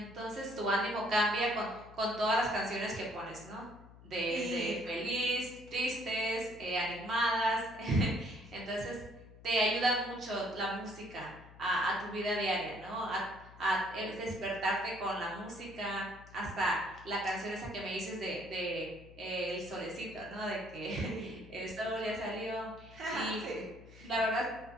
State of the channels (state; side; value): noise; left; hum, 19 dB below the sound